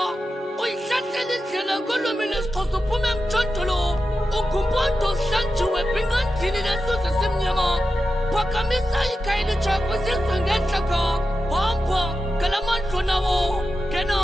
Uyihlahlele indlela kolwimi lesixhosa uphume emthontolo. Ugumpondo hlanjiwe bingandini nesuze simnyama. Phakamisa ikhaya elitsha kwizizwe ngentlaka. Hamba ngalamandlo nawo kena.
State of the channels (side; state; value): both; normal; correlation 0.91